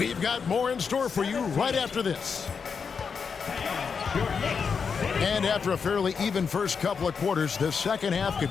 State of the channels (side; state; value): right; quieter; 5.9 dB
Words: got more in store for you right after this. And after a fairly even first couple of quarters, the second half